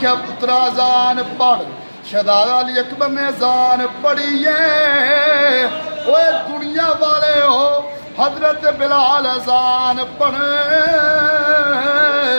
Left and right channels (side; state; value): both; inverted; correlation -1.00